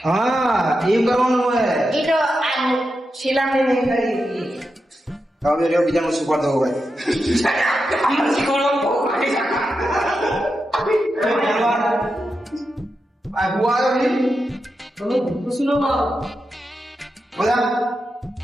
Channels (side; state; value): both; normal; correlation 0.88